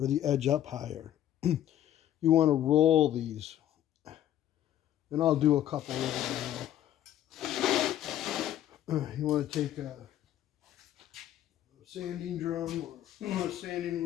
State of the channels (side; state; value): right; quieter; 11.8 dB